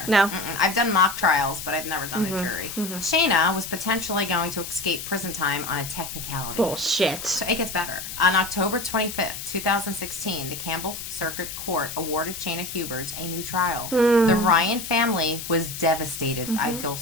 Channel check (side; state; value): left; noise; hiss, 8 dB below the sound